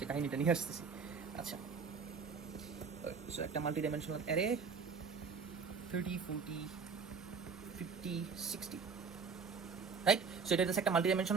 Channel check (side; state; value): left; quieter; 5.4 dB